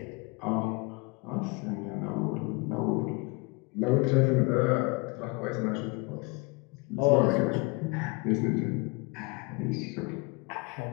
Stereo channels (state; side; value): quieter; right; 28.8 dB